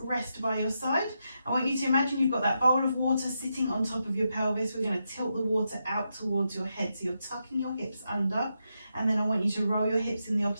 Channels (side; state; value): both; inverted; correlation -0.85